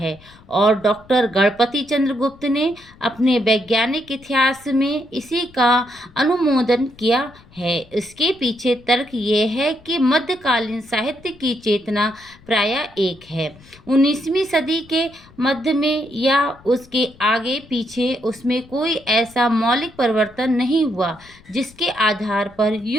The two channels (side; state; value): left; noise; rumble, 25 dB below the sound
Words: और डॉक्टर गणपति चंद्र गुप्त ने अपने वैज्ञानिक इतिहास में इसी का अनुमोदन किया है। इसके पीछे तर्क ये है कि मध्यकालीन साहित्य की चेतना प्रायः एक है। 19वीं सदी के मध्य में या उसके आगे पीछे उसमें कोई ऐसा मौलिक परिवर्तन नहीं हुआ जिसके आधार पर